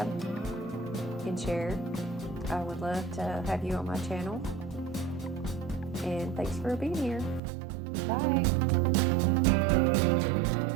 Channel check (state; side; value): drops out; left; at 7.4 s